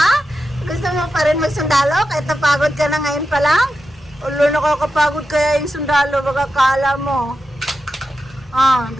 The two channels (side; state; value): both; normal; correlation 0.90